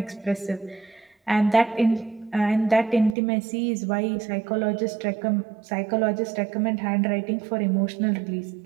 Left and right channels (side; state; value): left; drops out; at 3.2 s